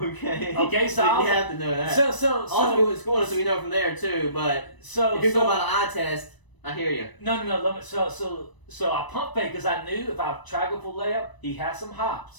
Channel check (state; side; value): late; right; 1.0 ms